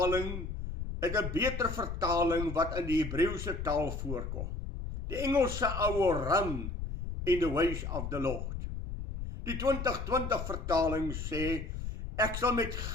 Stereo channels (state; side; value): noise; left; rumble, 5 dB below the sound